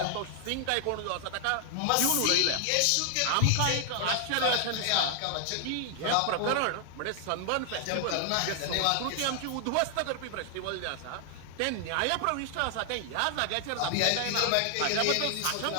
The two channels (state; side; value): different; both; correlation 0.00